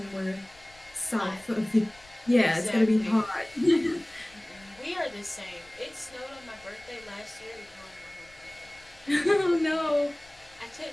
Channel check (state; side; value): noise; left; rumble, 28 dB below the sound